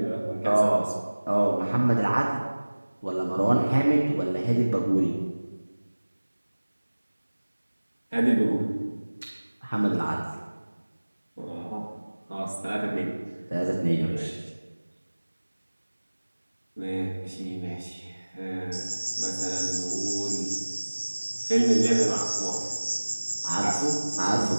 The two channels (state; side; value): inverted; both; correlation -1.00